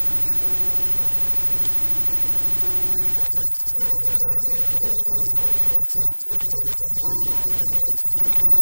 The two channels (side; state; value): both; inverted; correlation -1.00